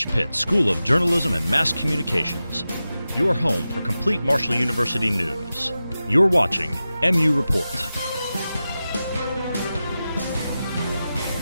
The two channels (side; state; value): both; inverted; correlation -0.93